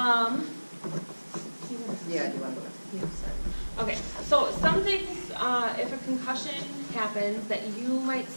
Yeah, do you want to go? okay, so some things, if a concussion happens that you might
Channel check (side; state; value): both; inverted; correlation -1.00